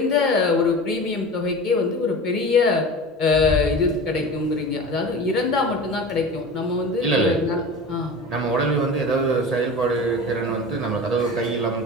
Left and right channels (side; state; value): both; normal; correlation 0.33